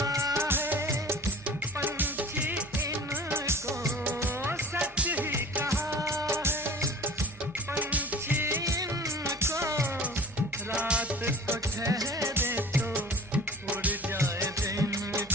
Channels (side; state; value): both; normal; correlation 0.43